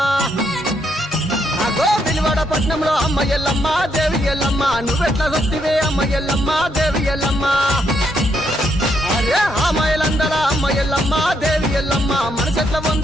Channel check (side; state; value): both; normal; correlation 0.76